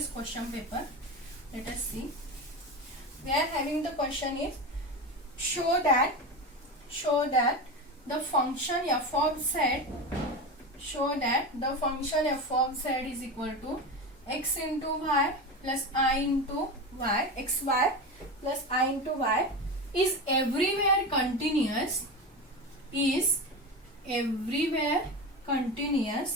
question paper. Let us see. We are having the question is show that the function f of z is equal to x into y plus I into y, xy plus I into y is everywhere continuous is everywhere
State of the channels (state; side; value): normal; both; correlation 0.23